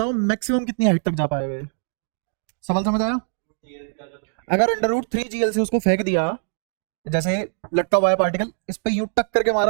मैक्सिमम कितनी हाइट तक जा पाएगा ये। सवाल समझ आया। अगर अंडर रूट 3GL से उसको फेंक दिया, जैसे लटका हुआ है पार्टिकल, इस पे यूं टक करके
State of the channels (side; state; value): left; silent; digital silence